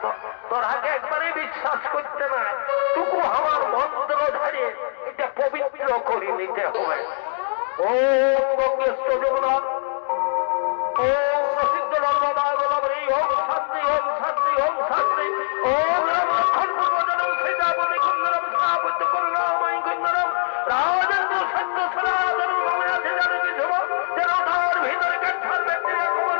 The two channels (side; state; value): right; silent; digital silence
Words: তোরাকে একবারেই বিশ্বাস করতে না। টুকু আমার মন্ত্র ধরে এটা পবিত্র করে নিতে হবে। ওম গঙ্গেশ্বর যমুনা, ওম প্রসিদ্ধ নর্মদা গোদাবরী, ওম শান্তি, ওম শান্তি, ওম শান্তি, ওম রামক্ষণ পূর্বজনম সীতাপতি কুন্দরম সাবুদ্ধ করুণাময়ী কুন্দরম রাজেন্দ্র সৈন্য সনাতন ভবনাথে জানকী ধ্রুব